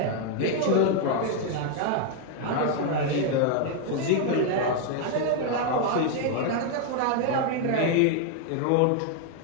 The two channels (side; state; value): both; different; correlation 0.01